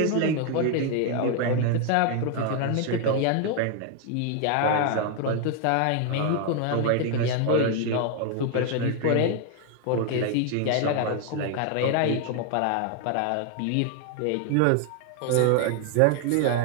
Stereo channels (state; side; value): different; both; correlation 0.00